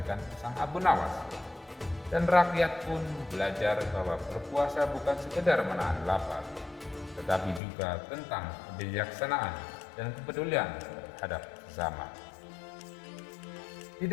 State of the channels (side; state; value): right; drops out; at 7.6 s